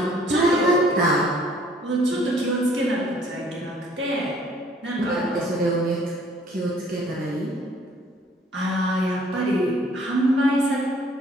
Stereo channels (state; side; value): normal; both; correlation 0.58